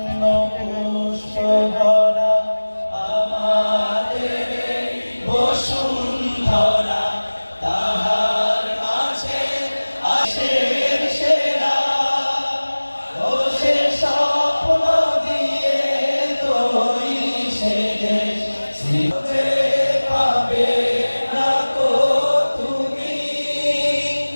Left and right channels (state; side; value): inverted; both; correlation -1.00